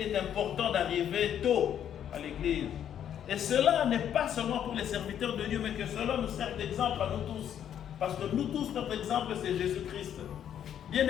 est important d'arriver tôt à l'église. Et cela n'est pas seulement pour les serviteurs de Dieu, mais que cela nous sert d'exemple à nous tous. Parce que nous tous, notre exemple, c'est Jésus-Christ.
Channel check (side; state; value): right; quieter; 9.7 dB